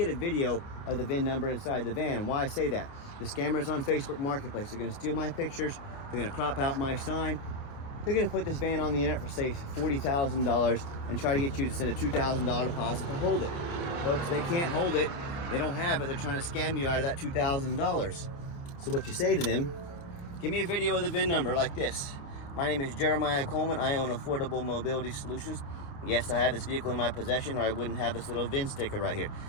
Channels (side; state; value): right; late; 29 ms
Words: a video of the VIN number inside the van. And why I say that, the scammers on Facebook Marketplace, they're gonna steal my pictures, they're gonna crop out my sign, they're gonna put this van on the internet for say $40,000 and try to get you to send a $2,000 deposit to hold it. Folks, they can't hold it, they don't have it, they're trying to scam you out of that $2,000. So what you say to them, give me a video of the VIN number like this. My name is Jeremiah Coleman. I own Affordable Mobility Solutions. Yes, I have this vehicle in my possession or I wouldn't have this little VIN sticker right here.